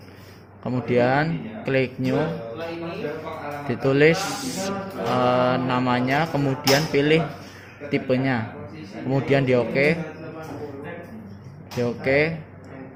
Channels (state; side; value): identical; both; correlation 1.00